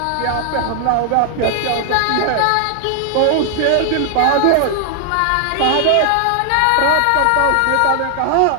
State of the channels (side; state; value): both; different; correlation 0.00